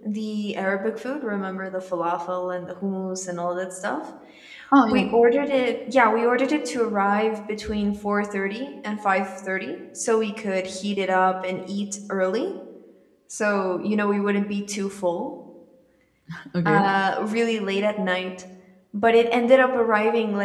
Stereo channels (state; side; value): identical; both; correlation 1.00